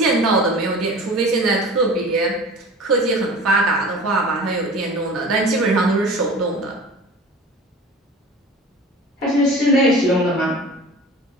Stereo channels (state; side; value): normal; both; correlation 0.39